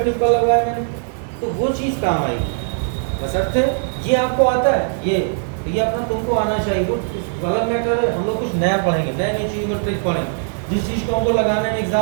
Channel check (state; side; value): silent; left; digital silence